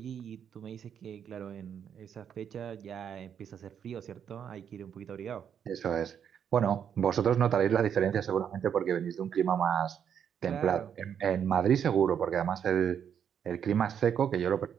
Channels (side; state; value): left; quieter; 8.3 dB